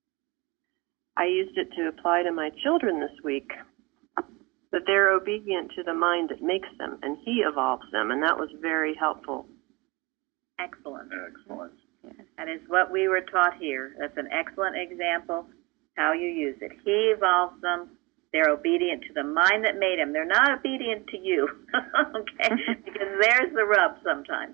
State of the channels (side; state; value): left; quieter; 25.4 dB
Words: I used it to apply to my children this week, that they're obedient to the mind that makes them, and he evolves them, and that was very helpful. Excellent. Excellent. That is what we were taught here. That's an excellent example how you use it. He evolves them. They're obedient to the mind that made them. They're not obedient to you, okay? Because there's the rub